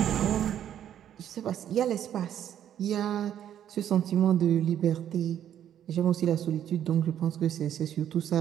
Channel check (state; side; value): quieter; left; 10.3 dB